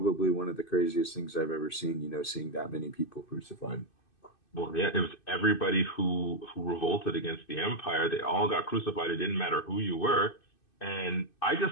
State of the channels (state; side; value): late; right; 2.6 ms